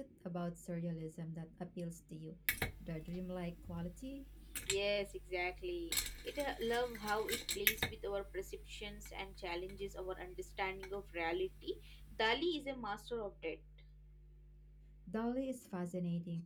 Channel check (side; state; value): both; identical; correlation 1.00